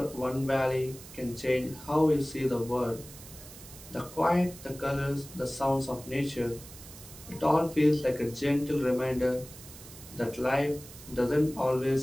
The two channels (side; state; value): right; noise; hiss, 17 dB below the sound